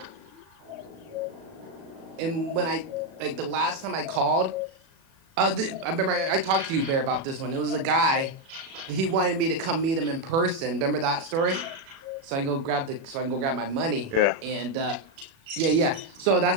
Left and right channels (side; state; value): left; late; 37 ms